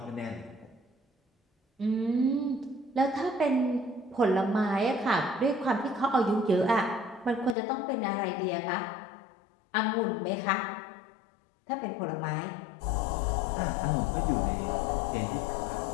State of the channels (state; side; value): drops out; right; at 7.6 s